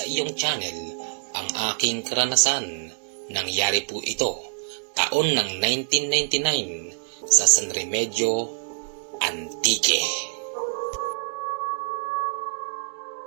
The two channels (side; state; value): left; silent; digital silence